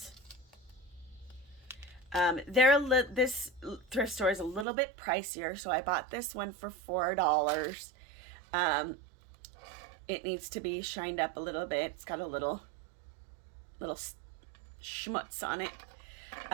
This thrift store is a little bit pricier, so I bought this one for $4. It needs to be shined up a little bit. It's got a little schmutz on it.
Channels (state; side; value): drops out; left; at 4.7 s